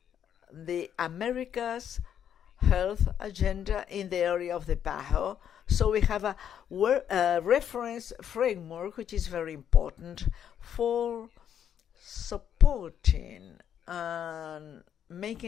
the Americas health agenda in the area of the PAHO. So we have a reference framework which is very important for supporting and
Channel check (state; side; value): quieter; right; 9.2 dB